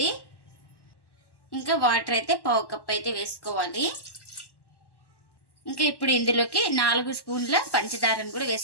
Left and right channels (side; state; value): right; late; 1.1 ms